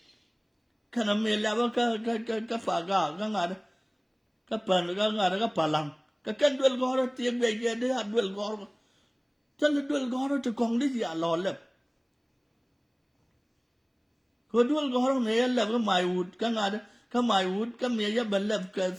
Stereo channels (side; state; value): both; identical; correlation 1.00